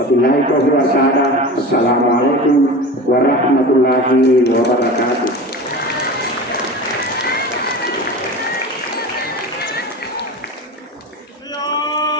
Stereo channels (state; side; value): normal; both; correlation 0.32